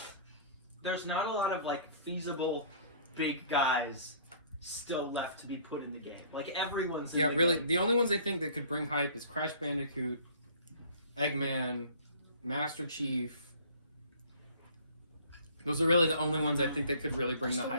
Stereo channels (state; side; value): inverted; both; correlation -0.51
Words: There's not a lot of like feasible big guys still left to be put in the game. Like everyone's. In Yeah, the really. game. The only ones I think that could bring hype is Crash Bandicoot, Eggman, Master Chief. Those are really the only ones I think that could really bring the Still